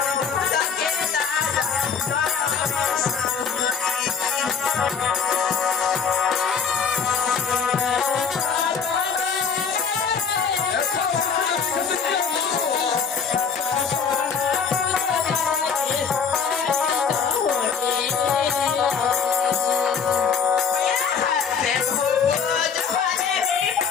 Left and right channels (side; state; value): right; quieter; 6.2 dB